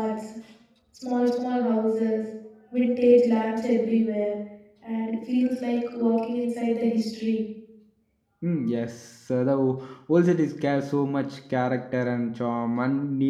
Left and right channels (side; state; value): both; identical; correlation 1.00